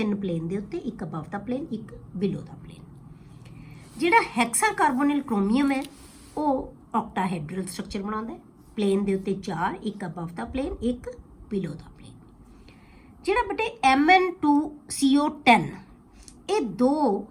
ਪਲੇਨ ਦੇ ਉੱਤੇ, ਇੱਕ ਅਬਵ ਦਾ ਪਲੇਨ, ਇੱਕ ਬਿਲੋ ਦਾ ਪਲੇਨ। ਜਿਹੜਾ ਹੈਕਸਾ ਕਾਰਬੋਨਿਲ ਕ੍ਰੋਮੀਅਮ ਹੈ, ਉਹ ਆਕਟਾਹੈਡਰਲ ਸਟਰਕਚਰ ਬਣਾਉਂਦਾ ਹੈ, ਪਲੇਨ ਦੇ ਉੱਤੇ 4, ਇੱਕ ਅਬਵ ਦਾ ਪਲੇਨ, ਇੱਕ ਬਿਲੋ ਦਾ ਪਲੇਨ। ਜਿਹੜਾ ਬੇਟੇ Mn2CO10, ਇਹ ਦੋ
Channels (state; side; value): identical; both; correlation 1.00